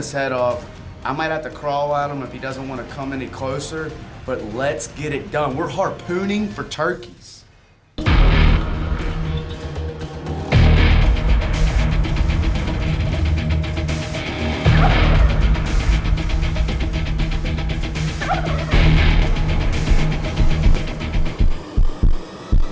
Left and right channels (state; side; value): identical; both; correlation 1.00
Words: head off. I might have to crawl at him if he doesn't want to come any closer, but let's get it done. We're harpooning for turkeys.